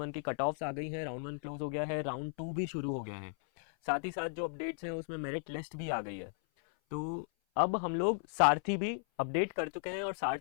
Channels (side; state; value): right; silent; 54 dB below the other